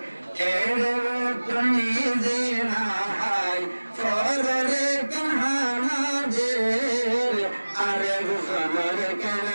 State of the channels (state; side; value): inverted; both; correlation -1.00